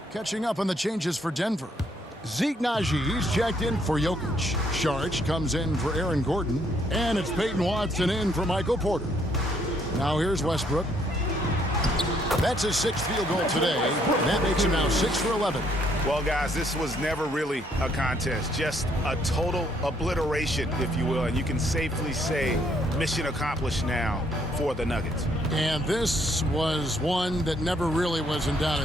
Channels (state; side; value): normal; both; correlation 0.69